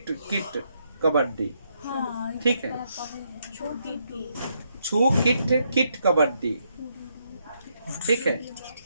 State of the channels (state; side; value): inverted; both; correlation -0.76